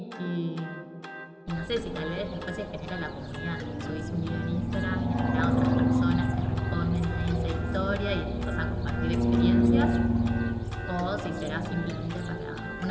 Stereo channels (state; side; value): identical; both; correlation 1.00